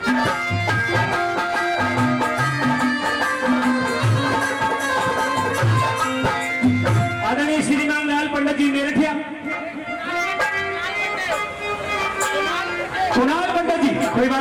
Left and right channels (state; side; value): identical; both; correlation 1.00